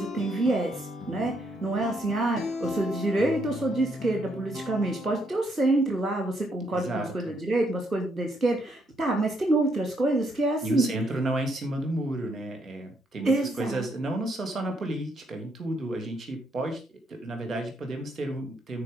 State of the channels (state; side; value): normal; both; correlation 0.74